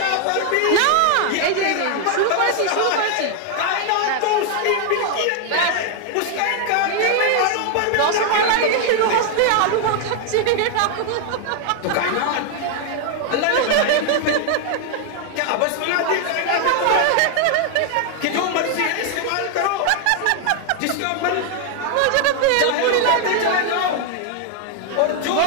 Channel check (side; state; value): both; different; correlation 0.00